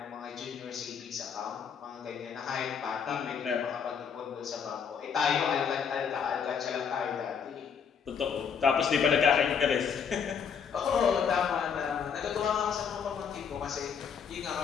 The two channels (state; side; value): quieter; right; 6.9 dB